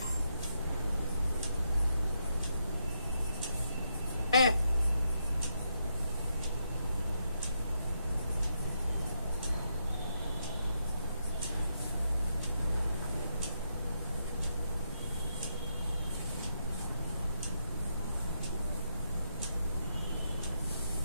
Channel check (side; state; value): both; inverted; correlation -0.80